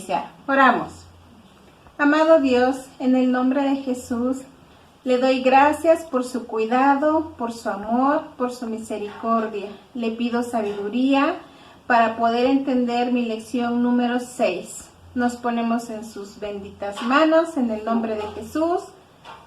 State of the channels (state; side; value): identical; both; correlation 1.00